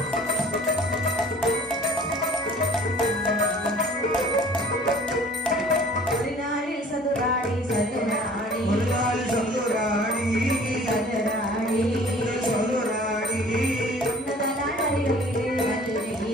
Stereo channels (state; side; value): normal; both; correlation 0.49